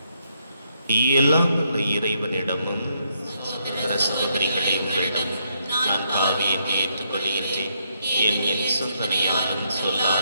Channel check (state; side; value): inverted; both; correlation -0.76